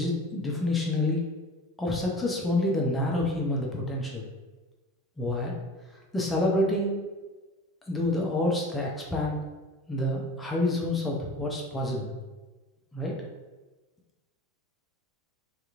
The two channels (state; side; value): normal; both; correlation 0.41